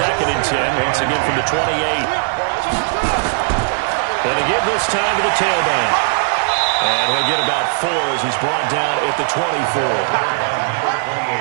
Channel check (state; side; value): silent; left; digital silence